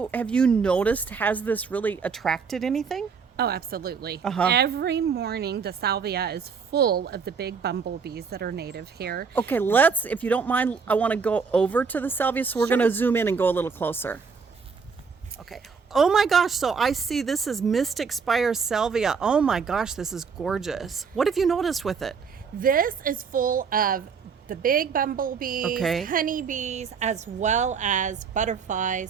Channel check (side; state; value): left; quieter; 5.7 dB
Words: noticed, has this really attracted anything? Oh, absolutely. Uh-huh. Every morning the salvia is full of the big bumblebees that are native here. Okay, if you don't mind, I want to go over to the salvia, so we're Sure. going to zoom in and go a little closer. Okay. Oh my gosh, so I see this is Mystic Spire salvia. Oh my gosh, this is gorgeous. What have you noticed with it? This is full of the big bumblebees, Okay. honeybees, as well as butterflies